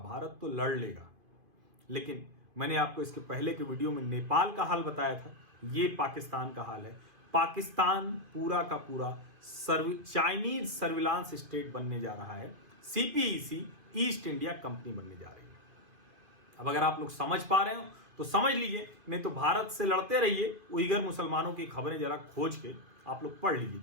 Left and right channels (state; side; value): late; left; 2.5 ms